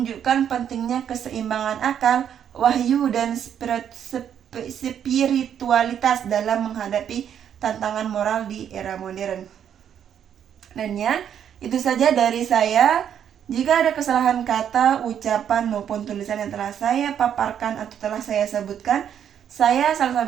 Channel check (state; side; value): quieter; left; 9.1 dB